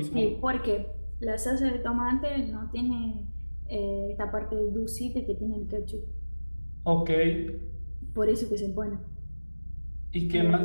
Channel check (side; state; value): both; inverted; correlation -1.00